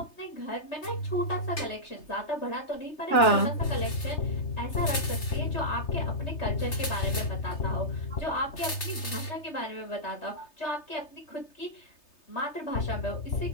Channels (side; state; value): right; late; 3.3 ms